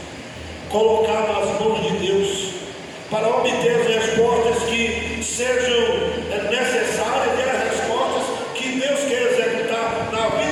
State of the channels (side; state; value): both; identical; correlation 1.00